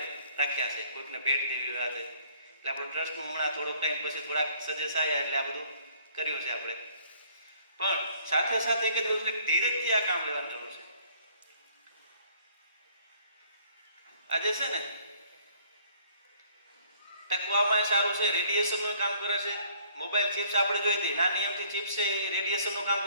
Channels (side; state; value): both; inverted; correlation -0.59